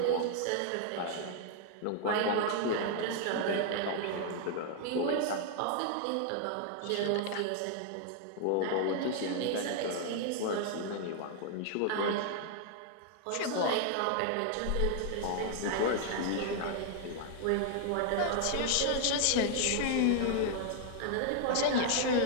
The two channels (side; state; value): both; different; correlation 0.00